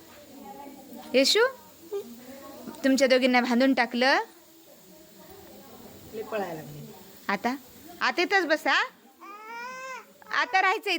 येशू, तुमच्या दोघींना बांधून टाकलं. आता आता इथंच बसा. आता राहायचं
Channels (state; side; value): identical; both; correlation 1.00